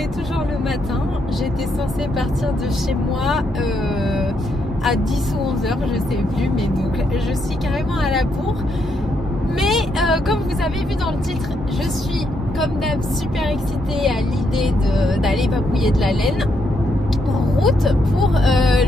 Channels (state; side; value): normal; both; correlation 0.77